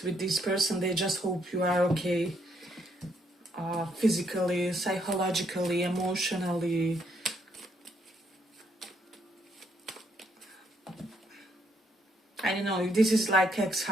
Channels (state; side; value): normal; both; correlation 0.72